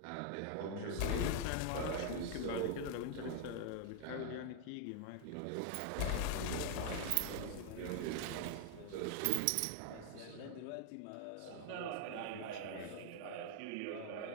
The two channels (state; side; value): different; both; correlation 0.00